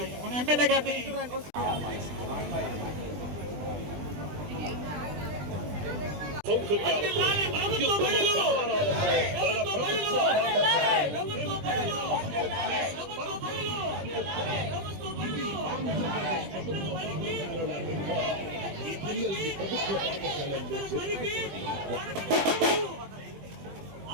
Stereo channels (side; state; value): left; late; 20 ms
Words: మన ఎమ్మెల్యే గారిని